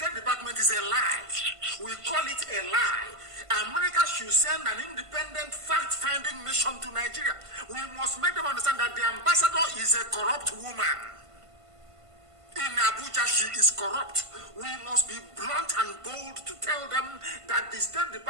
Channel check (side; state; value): left; late; 1.5 ms